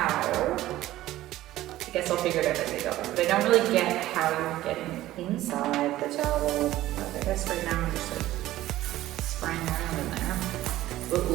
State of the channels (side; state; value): left; quieter; 15.2 dB